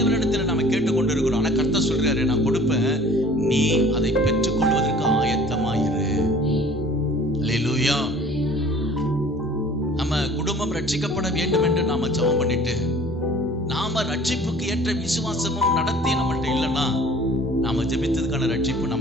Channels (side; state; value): both; normal; correlation 0.49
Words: நம்ம கேட்டுக்கொண்டு இருக்கிறோம். ஆனா கர்த்தர் சொல்றாரு, நான் கொடுப்பேன், நீ அதை பெற்றுக்கொள்வதற்கு ஆயத்தமாயிரு. அல்லேலூயா. நம்ம குடும்பம் ரட்சிக்கப்பட வேண்டும் என்று நாம ஜெபம் பண்ணிட்டு, நாம ரட்சிப்புக்கு ஏற்ற விசுவாசமும் நடத்தி நம்மள்ட்ட இல்லைன்னா நாம ஜெபித்ததுக்கான ரட்சிப்பு